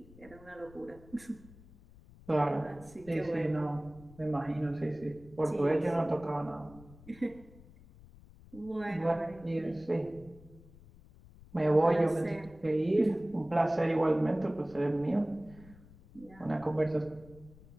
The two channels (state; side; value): noise; left; rumble, 22 dB below the sound